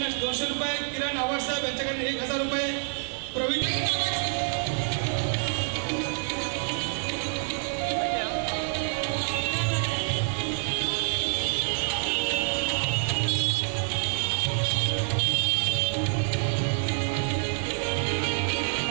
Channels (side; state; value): left; silent; digital silence